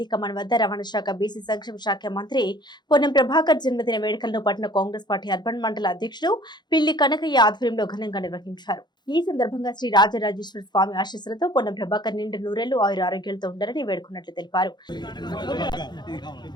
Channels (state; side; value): late; right; 0.21 ms